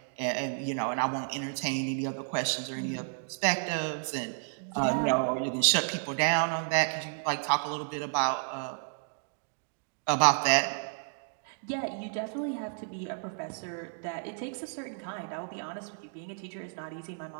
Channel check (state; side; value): silent; left; digital silence